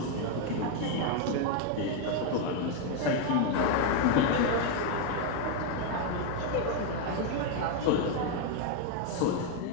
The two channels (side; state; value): both; different; correlation 0.01